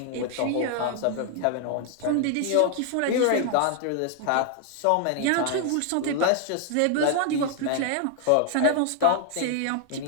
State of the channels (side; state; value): both; different; correlation 0.00